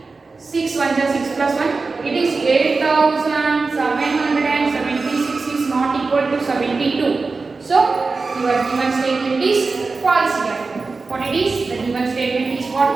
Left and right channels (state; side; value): quieter; left; 4.1 dB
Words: 6 1 are 6 plus 1, it is 8776 is not equal to 72. So, your given statement is false here. What it is? The given statement is what